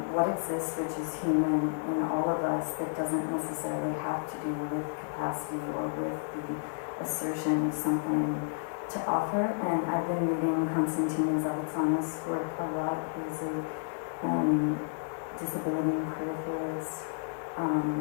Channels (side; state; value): right; silent; digital silence